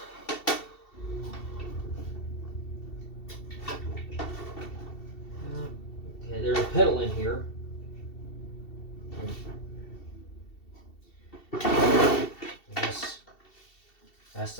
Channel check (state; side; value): late; right; 2.7 ms